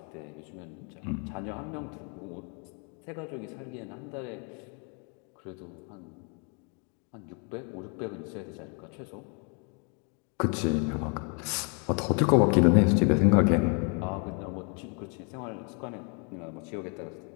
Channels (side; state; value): right; quieter; 36.7 dB